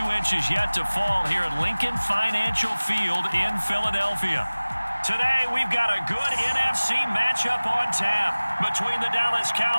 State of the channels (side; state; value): both; inverted; correlation -1.00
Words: inches yet to fall here at Lincoln Financial Field in Philadelphia. Today, we've got a good NFC matchup on tap between the Dallas